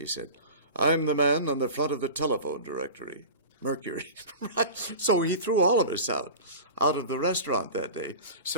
said, I'm the man on the front of the telephone directory. Mercury. Right? So he threw all of us out of the restaurant that day.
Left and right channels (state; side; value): inverted; both; correlation -0.33